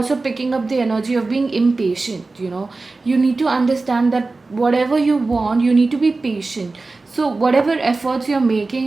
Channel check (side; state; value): left; quieter; 3.6 dB